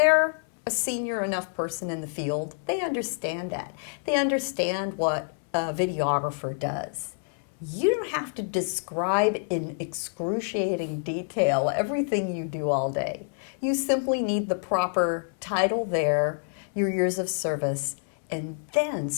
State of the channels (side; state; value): right; silent; 60 dB below the other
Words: a senior enough person in the field, they understand that. They understand what a videographer does. You don't have to describe in excruciating detail everything you do all day. You simply need the proper title there your years of service, and then